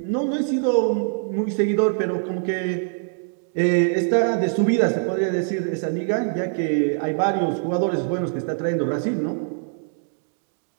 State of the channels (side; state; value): left; silent; digital silence